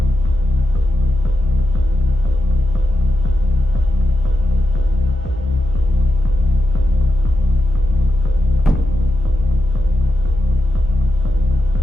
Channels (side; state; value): both; normal; correlation 0.89